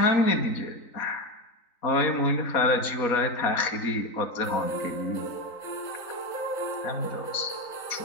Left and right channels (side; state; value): right; late; 3.9 ms